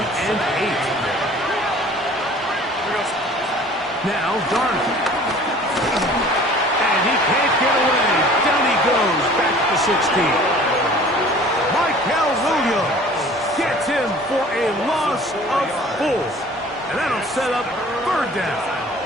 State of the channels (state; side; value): normal; both; correlation 0.48